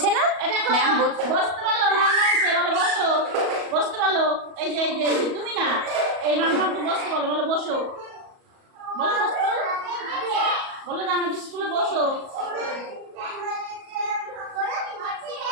না, ম্যাম বলছে। বসতে পারলো, ম্যাম বলছে বলো বসো, বসতে পারলো। এই যে তুমি না, এই ম্যামকে বসতে বলো, বলো বসো, বলো বসতে পারলো, বলো না আমাদের স্কুলে বসো।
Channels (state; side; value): late; left; 37 ms